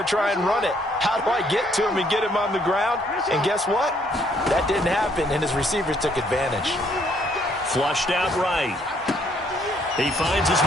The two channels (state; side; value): normal; both; correlation 0.67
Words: to try and run it. How do I get to him and get him on the ground? And guess what? That didn't happen, and his receivers took advantage. Flushed out right. He finds his